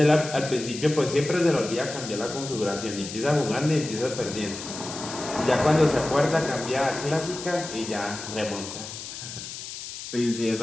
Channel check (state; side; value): noise; left; hiss, 10 dB below the sound